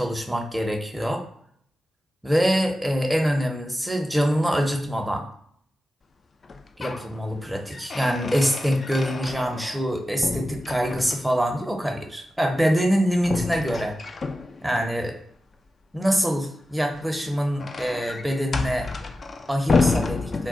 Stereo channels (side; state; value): both; normal; correlation 0.93